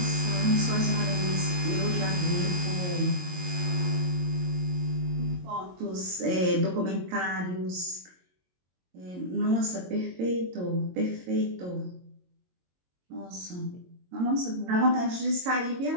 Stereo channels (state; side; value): late; left; 22 ms